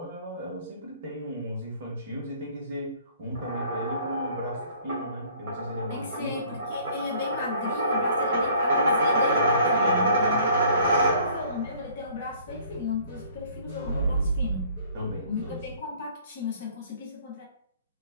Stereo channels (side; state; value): both; inverted; correlation -0.55